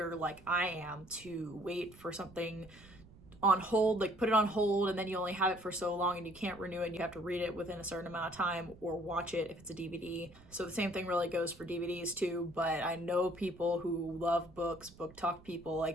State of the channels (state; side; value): noise; right; rumble, 22 dB below the sound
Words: like I am, to wait for something on hold, like put it on hold, and then you only have it for so long and you can't renew it and you have to read it within a certain amount of time or watch it if it's a DVD. So the same thing really goes for DVDs too, but I know people who love books, book talk people,